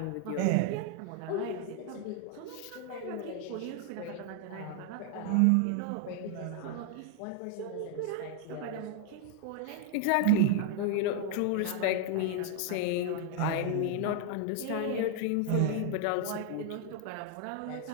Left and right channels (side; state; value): both; different; correlation 0.00